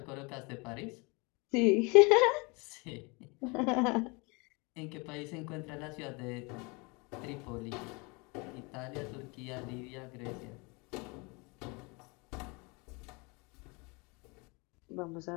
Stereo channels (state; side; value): quieter; right; 28.9 dB